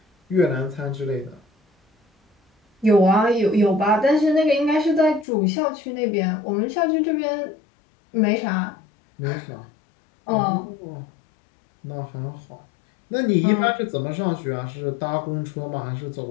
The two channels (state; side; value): drops out; right; at 5.2 s